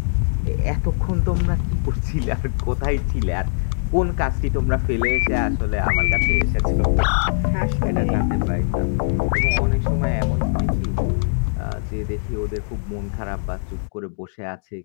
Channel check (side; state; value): right; silent; digital silence